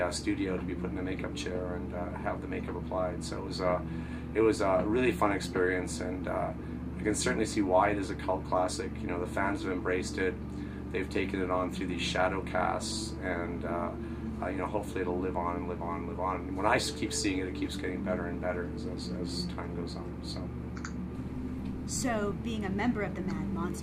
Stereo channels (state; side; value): identical; both; correlation 1.00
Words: studio to be put in a makeup chair and have the makeup applied. So it was a really fun experience, and I can certainly see why it is a cult classic. The fans have embraced it. They've taken it on through these shadow casts, and hopefully it'll live on and live on and live on. And when I keep seeing it, it keeps getting better and better as time goes on. So, being a member of the Mad